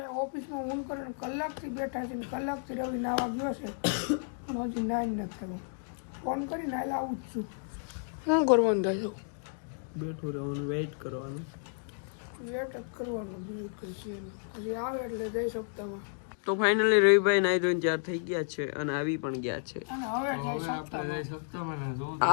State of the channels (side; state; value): right; silent; digital silence